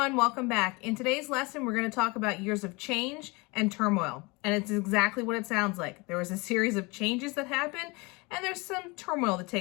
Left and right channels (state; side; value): quieter; right; 26.3 dB